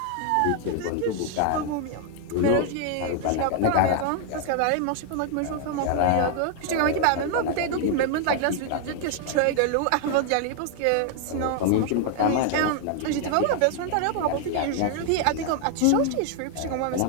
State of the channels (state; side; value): different; both; correlation 0.00